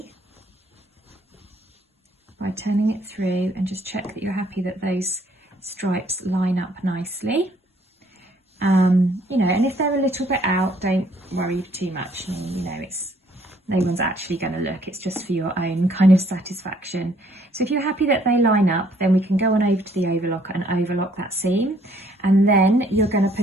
by turning it through, and just check that you're happy that those stripes line up nicely. You know, and if they're a little bit out, don't worry too much. I mean, you know, no one's actually going to look, it's just for your own kind of satisfaction. So if you're happy that they line up, then we can go on over to the overlocker and overlock that seam, and then you're going to put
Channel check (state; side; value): normal; both; correlation 0.64